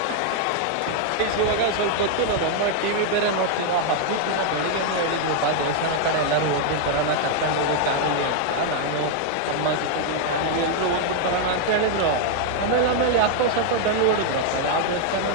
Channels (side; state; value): both; different; correlation 0.00